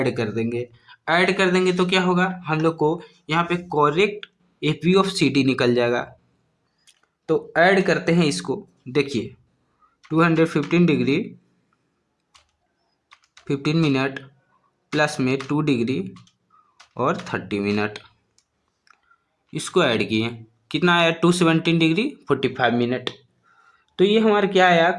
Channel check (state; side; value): identical; both; correlation 1.00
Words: कर देंगे। ऐड कर देंगे तो क्या होगा? हम लोग को यहाँ पे correct F B of C D निकल जाएगा। तो ऐड करते हैं इसको, देखिए 215 डिग्री 15 मिनट प्लस में 2 डिग्री और 30 मिनट, इसको ऐड किए, कितना आया? 217 डिग्री 45 मिनट। तो ये हमारा क्या आया?